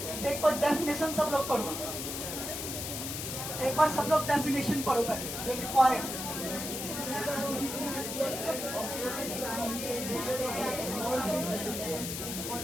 एक बार डेफिनेशन सब लोग पढ़ो, एक बार सब लोग डेफिनेशन पढ़ो पहले जो लिखवा है।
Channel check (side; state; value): left; noise; hiss, 5 dB below the sound